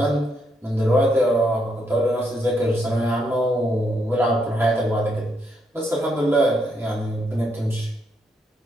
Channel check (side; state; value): both; normal; correlation 0.77